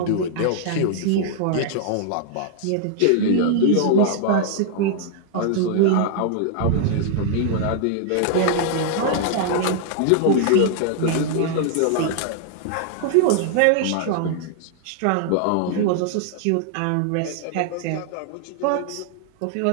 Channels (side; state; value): both; different; correlation -0.01